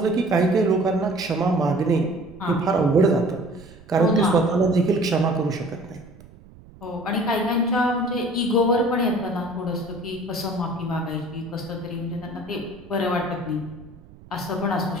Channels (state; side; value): noise; right; rumble, 22 dB below the sound